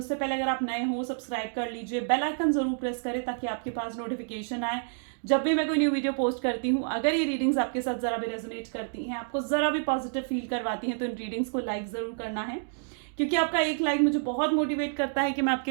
पहले अगर आप नए हो, सब्सक्राइब कर लीजिए, बेल आइकन जरूर प्रेस करें ताकि आपके पास नोटिफिकेशन आए जब भी मैं कोई न्यू वीडियो पोस्ट करती हूँ। अगर ये रीडिंग्स आपके साथ जरा भी रेजोनेट करती हैं, आपको जरा भी पॉजिटिव फील करवाती हैं, तो इन रीडिंग्स को लाइक जरूर करना है, क्योंकि आपका एक लाइक मुझे बहुत मोटिवेट करता है कि मैं आपके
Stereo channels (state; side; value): silent; left; digital silence